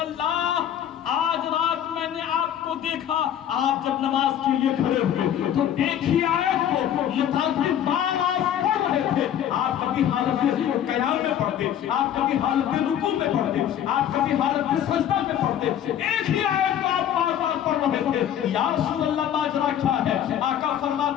آج رات میں نے آپ کو دیکھا آپ جب نماز کے لیے کھڑے ہوئے تو ایک ہی آیت کو متعدد بار آپ پڑھ رہے تھے. آپ کبھی حالت قیام میں پڑھتے, آپ کبھی حالت رکوع میں پڑھتے, آپ کبھی حالت سجدہ میں پڑھتے, ایک ہی آیت کو آپ بار بار پڑھ رہے تھے. یا رسول اللہ ماجرا کیا ہے؟ آقا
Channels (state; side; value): quieter; right; 10.2 dB